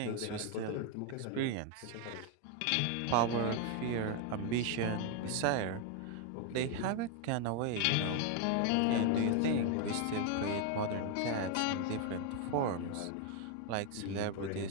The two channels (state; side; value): different; both; correlation 0.01